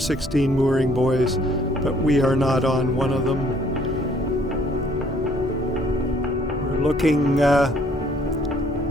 mooring buoys, but we are not on one of them. We're looking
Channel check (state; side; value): normal; both; correlation 0.62